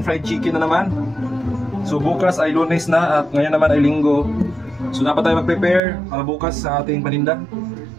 fried chicken na naman. So bukas ay Lunes na at ngayon naman ay Linggo. So dapat tayo mag-prepare para bukas sa ating paninda.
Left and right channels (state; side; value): drops out; left; at 5.8 s